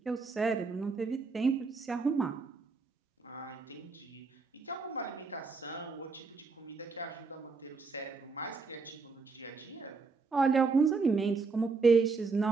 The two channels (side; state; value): left; quieter; 4.4 dB